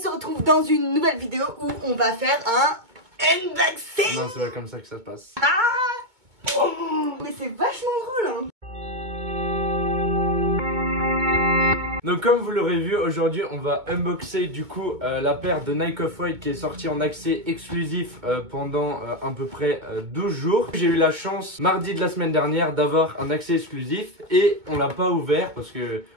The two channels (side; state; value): left; late; 2.2 ms